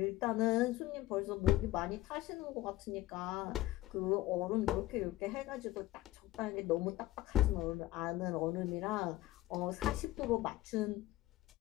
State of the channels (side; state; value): right; quieter; 16.3 dB